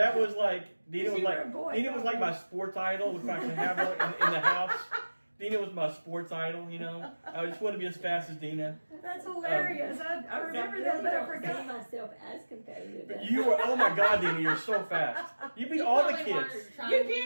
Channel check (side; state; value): both; inverted; correlation -1.00